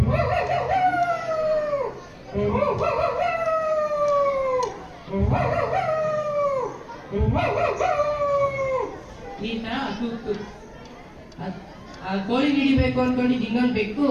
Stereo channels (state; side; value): identical; both; correlation 1.00